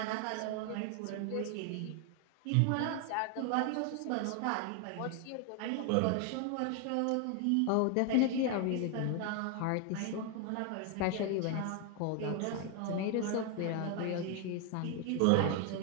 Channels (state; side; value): different; both; correlation 0.01